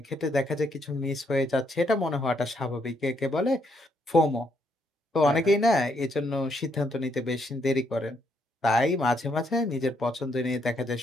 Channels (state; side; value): normal; both; correlation 0.74